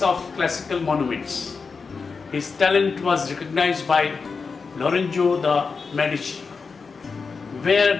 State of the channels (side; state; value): right; quieter; 4.9 dB